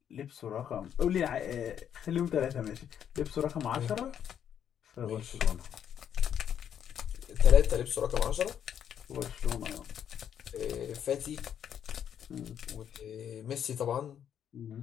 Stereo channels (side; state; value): right; quieter; 9.1 dB